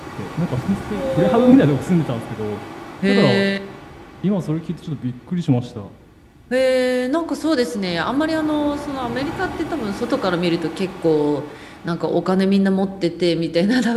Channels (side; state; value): both; identical; correlation 1.00